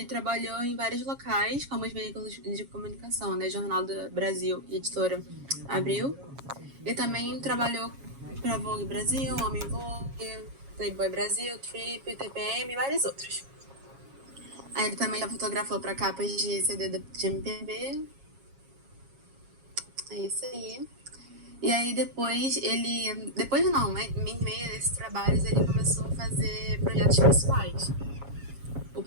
trabalhou em vários locais, como os veículos de comunicação, né, Jornal do Brasil e Editora Abril, e também trabalhou para Vogue Brasil, Homem Vogue, Playboy Brasil, Trip, TPM e vários outros. Aí ele também já fotografou para capas de CD de MPB. É isso aí. E aí depois em meio desses trabalhos, ele começou a fazer projetos pessoais. O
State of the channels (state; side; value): late; left; 7.3 ms